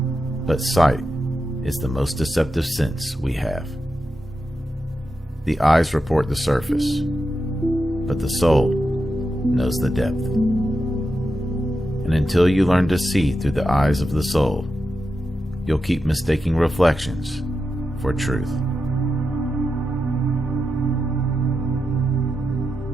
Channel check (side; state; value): both; normal; correlation 0.88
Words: but sight is the most deceptive sense we have. The eyes report the surface, but the soul knows the depth. And until you learn to see through the eyes of the soul, you'll keep mistaking reflections for truth.